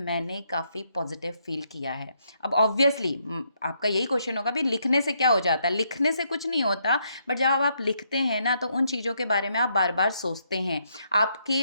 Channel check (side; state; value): both; inverted; correlation -0.75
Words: काफ़ी पॉजिटिव फील किया है। अब ऑब्वियसली आपका यही क्वेश्चन होगा, भाई लिखने से क्या हो जाता है? लिखने से कुछ नहीं होता, बट जब आप लिखते हैं ना तो उन चीज़ों के बारे में आप बार बार सोचते हैं,